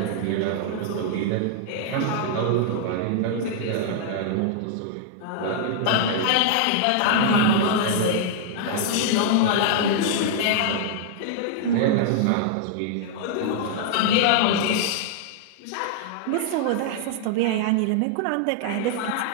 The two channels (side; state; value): both; different; correlation -0.01